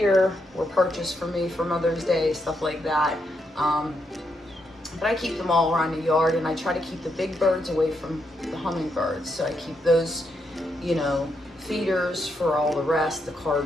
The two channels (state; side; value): normal; both; correlation 0.80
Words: were purchased for me for Mother's Day, stuff like that. But I keep them all around the yard, and I try to keep the big birds away from the hummingbirds. So I keep those, feeders for all the rest, the